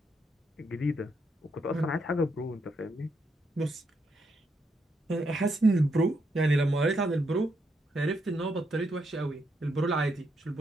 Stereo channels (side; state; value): both; normal; correlation 0.78